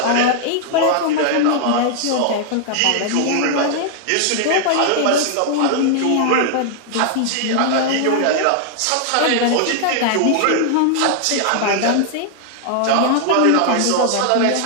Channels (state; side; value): different; both; correlation 0.00